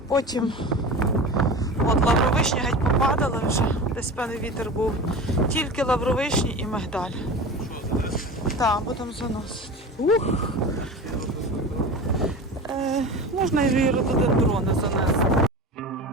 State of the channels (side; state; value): both; normal; correlation 0.32